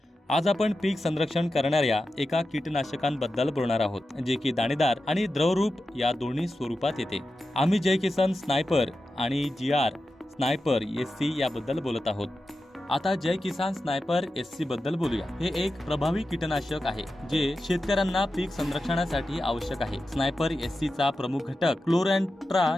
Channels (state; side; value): normal; both; correlation 0.91